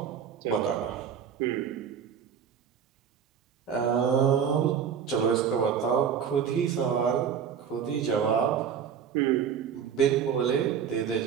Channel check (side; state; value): left; quieter; 7.7 dB